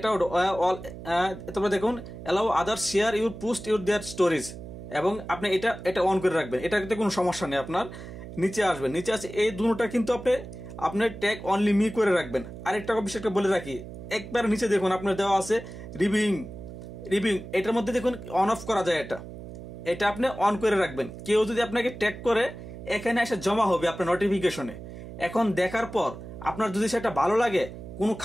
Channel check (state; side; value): noise; right; hum, 12 dB below the sound